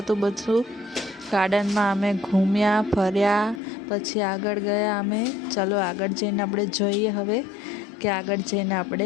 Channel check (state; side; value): drops out; right; at 3.6 s